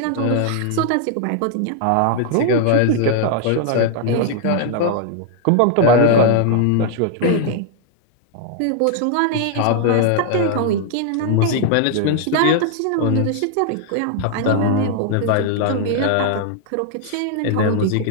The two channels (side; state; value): both; different; correlation 0.00